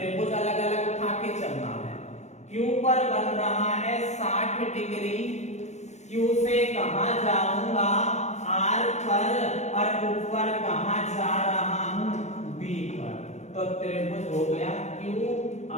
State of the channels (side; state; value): right; late; 0.33 ms